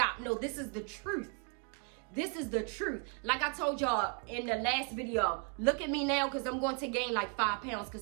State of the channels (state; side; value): quieter; left; 36.6 dB